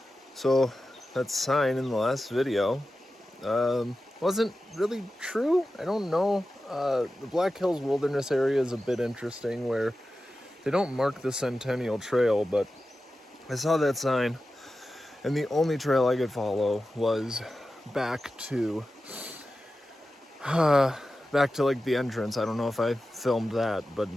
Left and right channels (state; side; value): normal; both; correlation 0.93